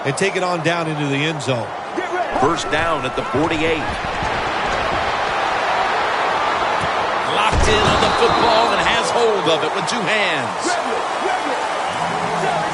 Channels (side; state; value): both; identical; correlation 1.00